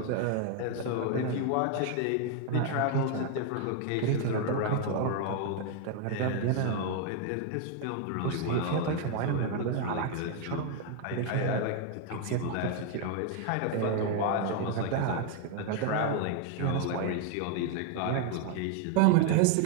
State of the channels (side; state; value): both; different; correlation 0.01